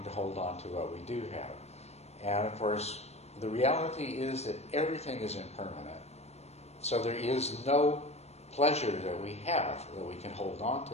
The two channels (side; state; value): right; late; 0.31 ms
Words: to hold on to what we do have. And of course, the reality is that everything is impermanent. So there is no pleasure that we have that we can hold on to.